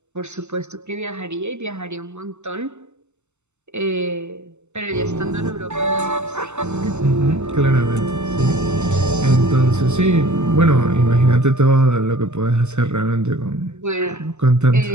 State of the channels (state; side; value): late; left; 0.83 ms